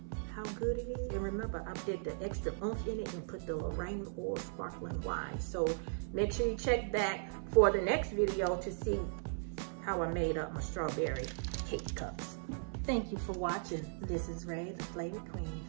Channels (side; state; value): left; silent; 53 dB below the other